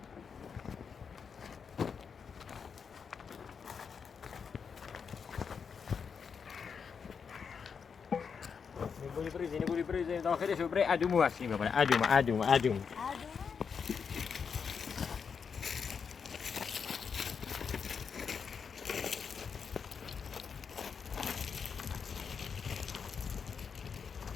بوری بریزیم داخلش رو برای ادومو ورسیم ببره. ادوم.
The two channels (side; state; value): right; quieter; 6.2 dB